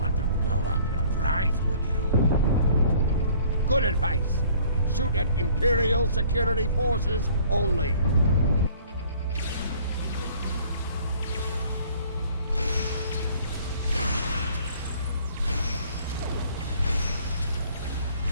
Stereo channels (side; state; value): both; inverted; correlation -0.55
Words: to blow up your prize, would you? Good advice. Shoot at Imperial security forces only.